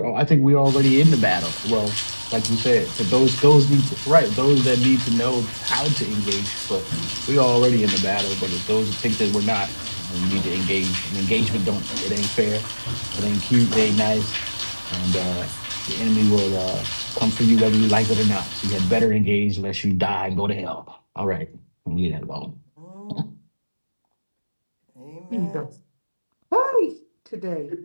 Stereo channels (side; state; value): both; inverted; correlation -1.00